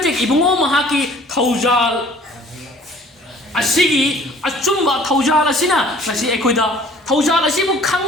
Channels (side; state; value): both; normal; correlation 0.52